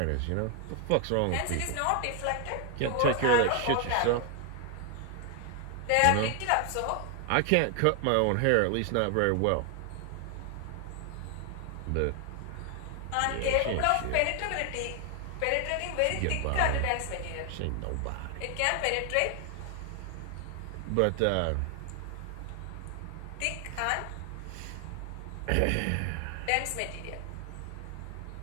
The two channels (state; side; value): different; both; correlation 0.00